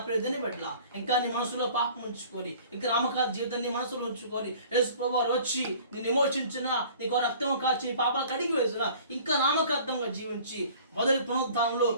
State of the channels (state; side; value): inverted; both; correlation -0.48